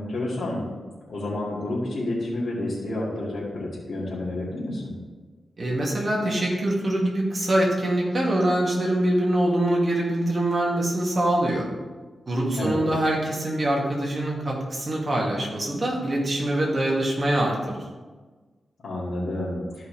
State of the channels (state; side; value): normal; both; correlation 0.90